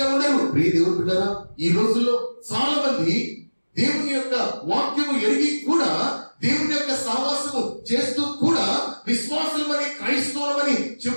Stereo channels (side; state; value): both; inverted; correlation -1.00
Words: ఉండరు. ప్రియ దేవుని బిడ్డలారా, ఈ రోజుల్లో చాలా మంది దేవుని యొక్క వాక్యము ఎరిగి కూడా, దేవుని యొక్క సహవాసము చేస్తూ కూడా, విశ్వాసులమని క్రైస్తవులమని